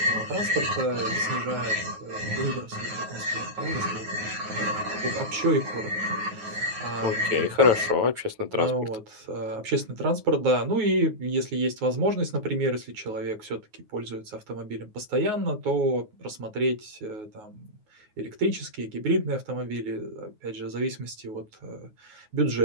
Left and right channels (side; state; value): left; late; 9.5 ms